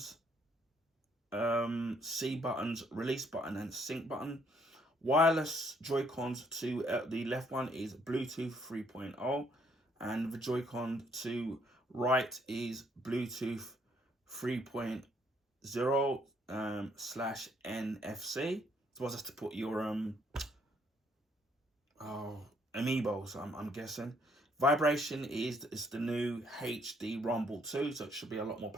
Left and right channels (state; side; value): normal; both; correlation 0.67